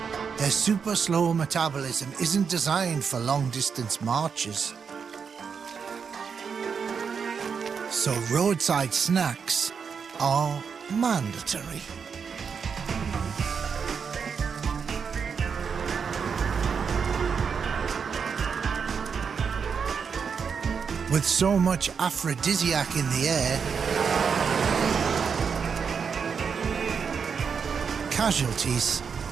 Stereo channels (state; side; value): quieter; left; 6.2 dB